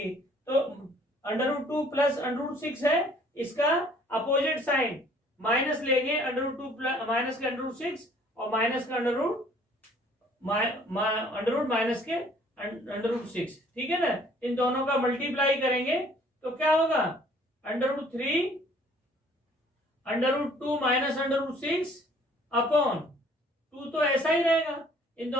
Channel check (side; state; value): both; normal; correlation 0.57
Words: तो √2 प्लस √6 है, इसका अपोजिट साइन माइनस लेंगे, √2 प्लस माइनस के √6 और माइनस का √रूट माइनस के √6। ठीक है ना, इन दोनों का मल्टीप्लाई करेंगे तो क्या होगा, √3 √2 माइनस √6 अपॉन 2, तो ऐसा ही रहेगा। इन